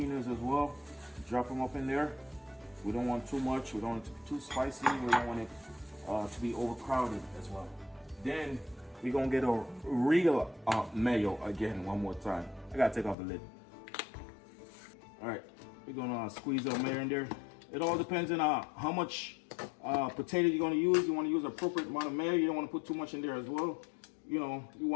as well. Drop them up in there. We don't want too much. We don't want it to be too spicy. We don't want it to be overcrowded as well. Then we're gonna get a real mayo again one more time. I gotta take off the lid. All right, we're gonna squeeze our mayo in there. It all depends on how much potato you're gonna use. You want to use an appropriate amount of mayo. You don't want to put too much in there as well. you know, you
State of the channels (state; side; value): drops out; right; at 13.2 s